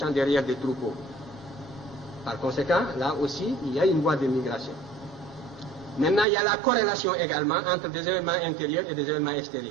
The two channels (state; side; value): drops out; left; at 6.2 s